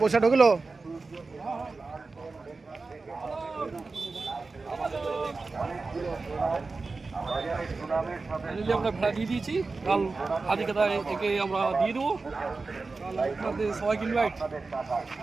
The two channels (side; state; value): left; quieter; 3.9 dB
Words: ঢুকলো ফাইনালি আমরা ভেড়া দিয়ে দিয়েছি, কাল আদিকাতা একে আমরা দিয়ে দেবো। কাল আপনাদের সবাইকে ইনভাইট।